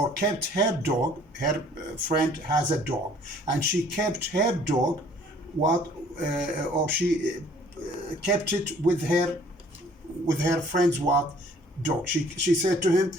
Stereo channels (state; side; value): normal; both; correlation 0.56